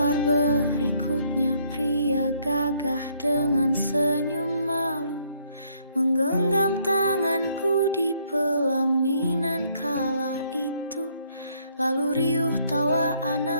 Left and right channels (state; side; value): inverted; both; correlation -0.68